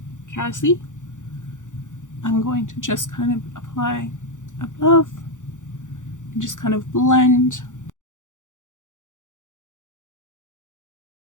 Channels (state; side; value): late; right; 0.86 ms